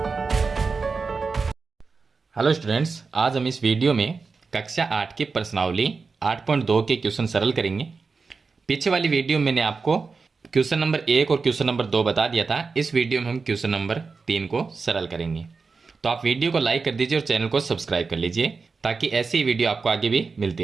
हेलो स्टूडेंट्स, आज हम इस वीडियो में कक्षा 8 की प्रश्नावली 8.2 के क्वेश्चन सरल करेंगे। पीछे वाली वीडियो में मैंने आपको क्वेश्चन नंबर 1 और क्वेश्चन नंबर 2 बता दिया था। इस वीडियो में हम क्वेश्चन नंबर 3 को सरल करेंगे। तो आप वीडियो को लाइक कर दीजिए और चैनल को सब्सक्राइब कर लीजिए ताकि ऐसी ही वीडियो आपको आगे भी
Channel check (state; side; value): quieter; left; 4.6 dB